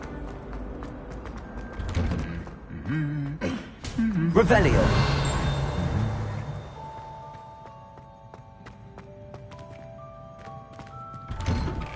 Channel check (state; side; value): identical; both; correlation 1.00